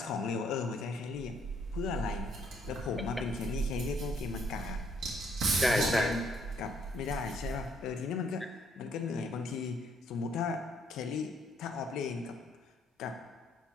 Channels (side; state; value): both; normal; correlation 0.68